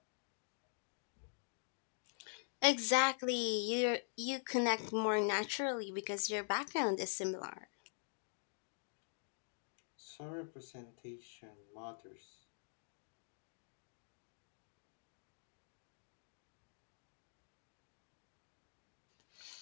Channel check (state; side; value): silent; right; digital silence